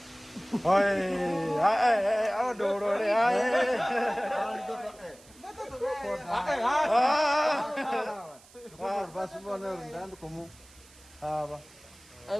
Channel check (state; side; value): noise; right; hiss, 24 dB below the sound